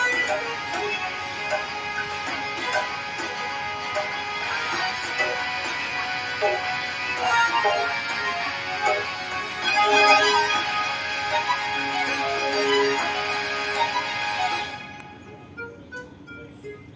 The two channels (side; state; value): both; identical; correlation 1.00